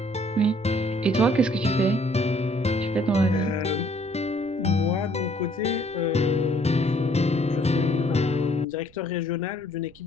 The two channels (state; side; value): noise; right; rumble, 26 dB below the sound